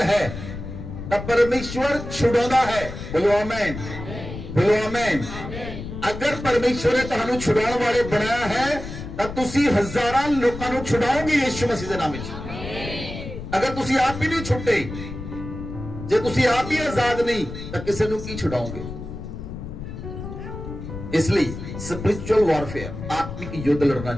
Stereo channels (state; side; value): noise; left; rumble, 9 dB below the sound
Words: ਹੈ ਤਾਂ ਪਰਮੇਸ਼ਵਰ ਛੁਡਾਉਂਦਾ ਹੈ। ਬੋਲੋ ਆਮੇਨ, ਬੋਲੋ ਆਮੇਨ। ਅਗਰ ਪਰਮੇਸ਼ਵਰ ਨੇ ਤੁਹਾਨੂੰ ਛੁਡਾਉਣ ਵਾਲੇ ਬਣਾਇਆ ਹੈ ਤਾਂ ਤੁਸੀਂ ਹਜ਼ਾਰਾਂ ਲੋਕਾਂ ਨੂੰ ਛੁਡਾਓਗੇ ਯਿਸੂ ਮਸੀਹ ਦੇ ਨਾਮ ਵਿੱਚ। ਅਗਰ ਤੁਸੀਂ ਆਪ ਹੀ ਨਹੀਂ ਛੁੱਟੇ, ਜੇ ਤੁਸੀਂ ਆਪ ਹੀ ਆਜ਼ਾਦ ਨਹੀਂ ਤਾਂ ਕਿਸੇ ਨੂੰ ਕੀ ਛੁਡਾਓਗੇ। ਇਸ ਲਈ ਸਪਿਰਿਚੁਅਲ ਵਾਰਫੇਅਰ ਆਤਮਿਕ ਯੁੱਧ ਲੜਨਾ